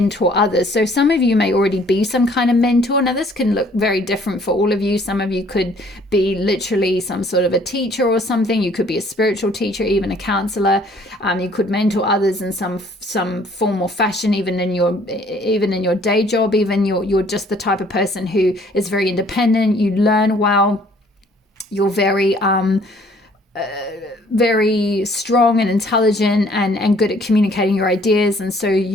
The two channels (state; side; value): normal; both; correlation 0.59